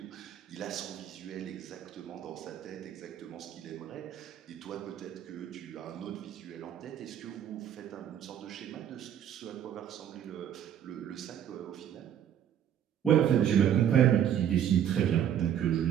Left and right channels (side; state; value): left; quieter; 9.8 dB